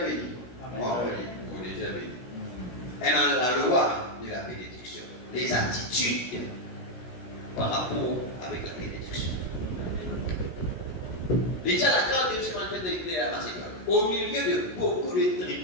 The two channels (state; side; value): late; right; 16 ms